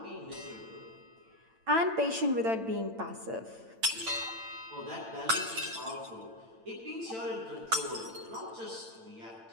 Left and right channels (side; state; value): left; late; 8.9 ms